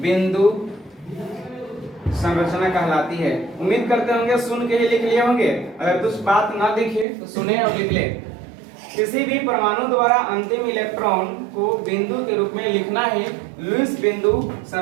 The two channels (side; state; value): left; drops out; at 7.1 s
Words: बिंदु संरचना कहलाती है। उम्मीद करते होंगे सुन के ही लिख लिए होंगे। अगर कुछ बात ना दिखे तो सुने और लिख ले। किसी भी परमाणु द्वारा अंतिम इलेक्ट्रॉन को बिंदु के रूप में लिखना ही लुईस बिंदु